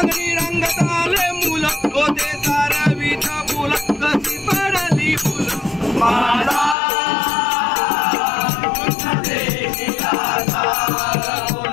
रंगात आले मुल होते तारवीच फुल कशी पडली फुल माझा कृष्ण देखील आता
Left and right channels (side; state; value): right; drops out; at 6.8 s